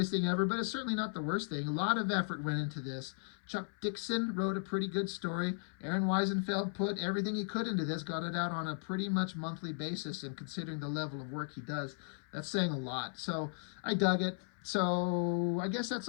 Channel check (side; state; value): right; silent; 54 dB below the other